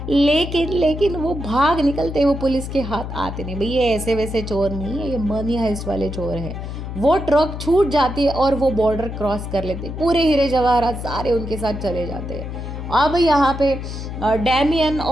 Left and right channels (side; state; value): left; noise; hum, 7 dB below the sound